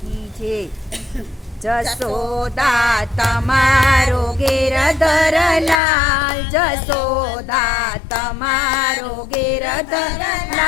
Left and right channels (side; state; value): right; drops out; at 5.8 s